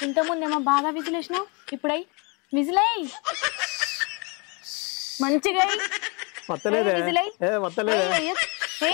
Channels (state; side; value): quieter; right; 31.3 dB